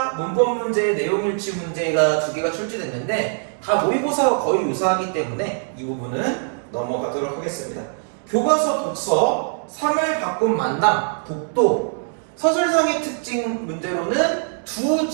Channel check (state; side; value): silent; left; 64 dB below the other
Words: 문법 문제, 내용 일치 문제가 2개가 출제됐는데 다 모의고사와 거의 유사하기 때문에 이 부분은 넘어가도록 하겠습니다. 교과서 독서, 3을 바꾼 만남, 독도, 서술상의 특징 문제로는 두